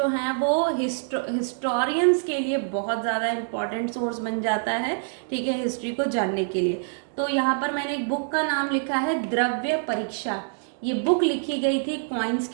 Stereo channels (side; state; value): left; silent; digital silence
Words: हैं वो हिस्टोरियंस के लिए बहुत ज़्यादा इंपॉर्टेंट सोर्स बन जाता है, ठीक है, हिस्ट्री को जानने के लिए। तो यहाँ पर मैंने एक बुक का नाम लिखा है द्रव्य परीक्षा। ये बुक लिखी गई थी कॉइन्स